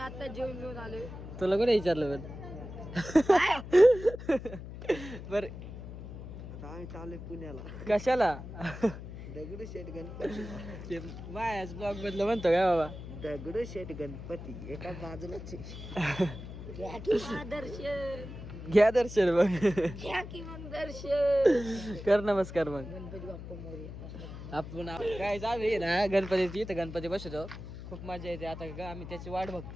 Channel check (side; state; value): left; noise; hum, 11 dB below the sound